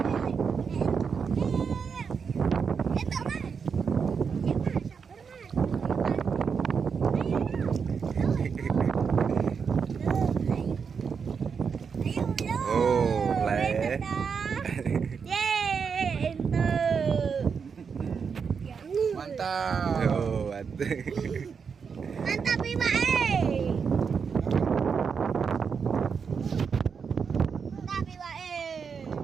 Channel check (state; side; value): quieter; left; 6.1 dB